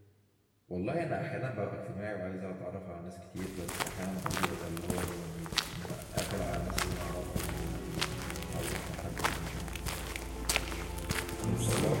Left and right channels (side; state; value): both; identical; correlation 1.00